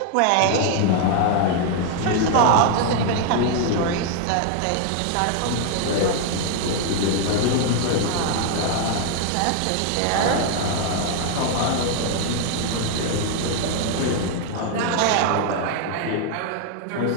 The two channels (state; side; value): different; both; correlation 0.00